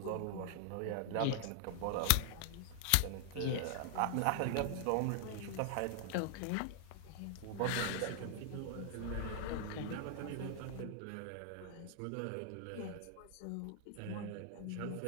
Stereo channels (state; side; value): different; both; correlation 0.00